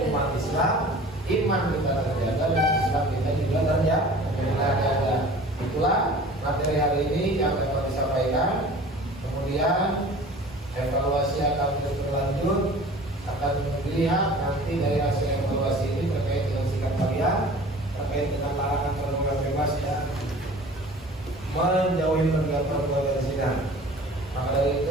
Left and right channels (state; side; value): normal; both; correlation 0.44